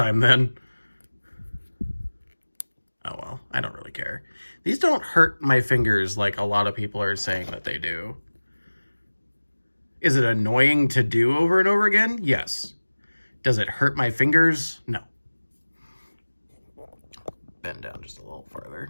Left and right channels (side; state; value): both; inverted; correlation -1.00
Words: then. Oh well, I don't really care. These don't hurt my fingers like a lot of people are saying that they do. Is it annoying to do over and over again? Yes. Does it hurt my fingers? No. Bend down just a little